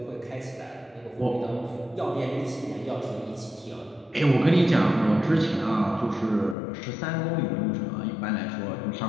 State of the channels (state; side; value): drops out; right; at 6.6 s